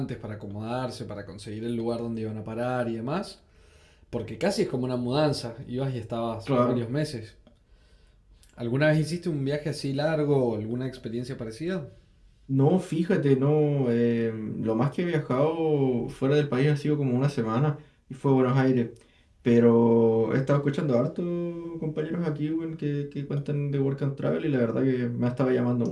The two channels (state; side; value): identical; both; correlation 1.00